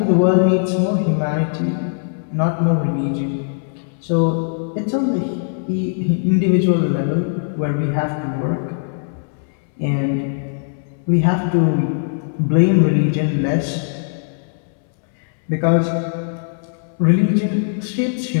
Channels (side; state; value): right; silent; 66 dB below the other